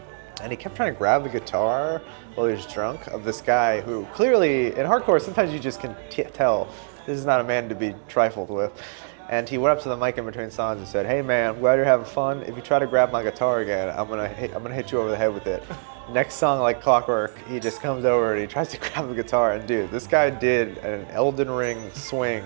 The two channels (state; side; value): silent; left; digital silence